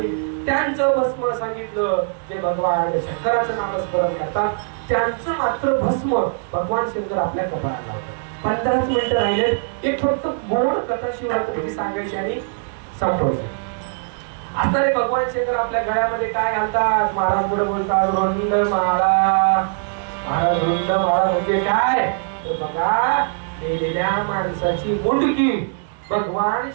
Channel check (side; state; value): left; silent; 65 dB below the other